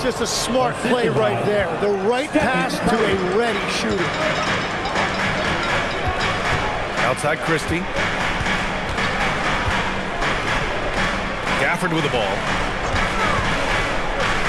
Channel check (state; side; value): identical; both; correlation 1.00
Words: just a smart play right there. The right pass to a ready shooter. Outside Christie. Gafford with the ball.